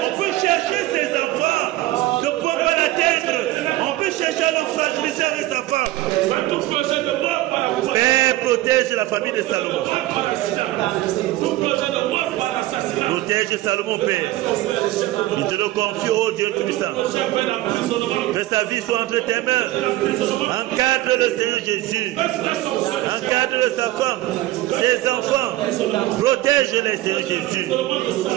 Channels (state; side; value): quieter; left; 16.8 dB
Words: peut chercher ses enfants. Ne prends pas l'atteindre. On peut chercher à le fragiliser avec sa femme. Père, protège la famille de Salomon. Protège Salomon, Père. Je te le confie, oh Dieu Tout-Puissant. Que sa vie soit entre tes mains. Encadre le Seigneur Jésus. Encadre sa femme, ses enfants. Protège-les, Seigneur Jésus.